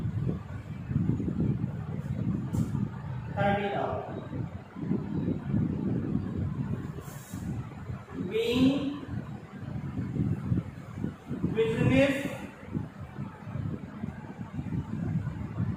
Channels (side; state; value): both; identical; correlation 1.00